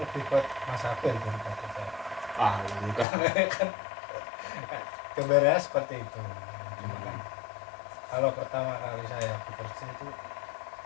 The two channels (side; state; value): right; drops out; at 3.1 s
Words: buat Mas Abel daripada saya. Enggak. kan gambarnya seperti itu. Cuma kan kalau pertama kali saya bekerja itu